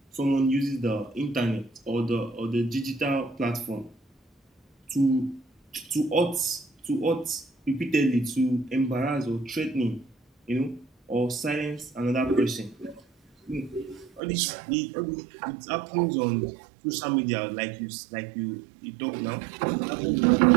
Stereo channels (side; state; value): left; drops out; at 14.2 s